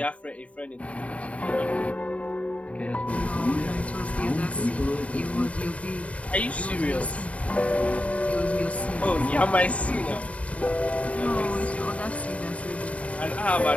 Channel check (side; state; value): right; late; 0.065 ms